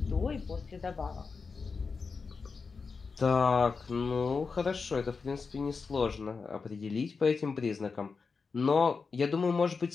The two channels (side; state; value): right; quieter; 4.9 dB